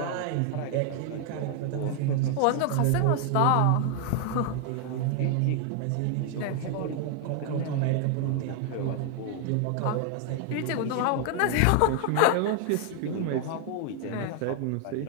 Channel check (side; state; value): both; different; correlation 0.00